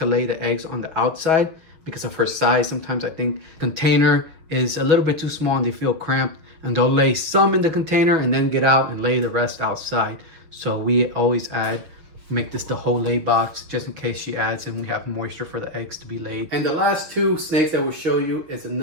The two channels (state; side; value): late; left; 6.6 ms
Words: lay the eggs on the outside because of her size. Sometimes I think container is a little bit too small and they feel cramped, and they'll lay some in the container and then get out and lay the rest outside. So we always make this the whole lay box just in case she adds and we have moisture for the eggs to be laid. And the last two snakes that we'll show you is